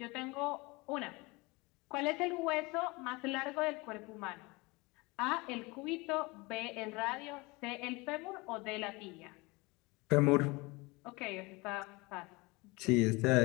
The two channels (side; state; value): right; quieter; 24.9 dB